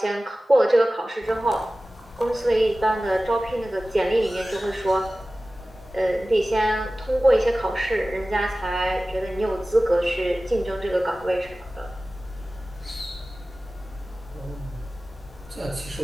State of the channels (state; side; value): normal; both; correlation 0.96